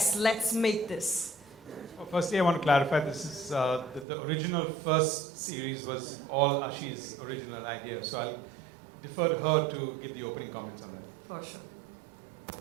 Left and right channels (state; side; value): drops out; left; at 4.0 s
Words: let's make this? Well, firstly, I want to clarify this is the original first series was all Ashi's original idea. So I'll defer to her to give the opening comments on that. For sure.